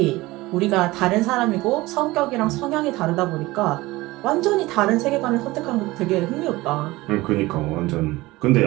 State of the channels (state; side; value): quieter; left; 19.8 dB